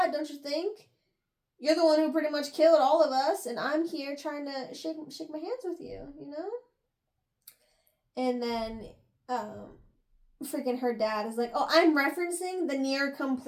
don't you think? You're the one who pretty much killed all of us, and I'm here trying to shake my hands with you, you know? And then, freaking her dad is like, oh, I'm referencing the near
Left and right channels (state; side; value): identical; both; correlation 1.00